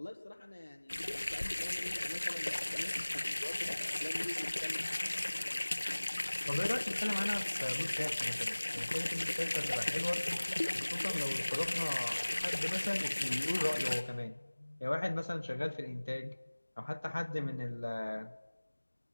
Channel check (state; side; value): inverted; both; correlation -1.00